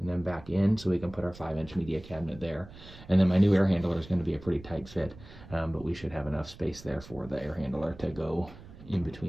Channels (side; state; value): right; noise; rumble, 18 dB below the sound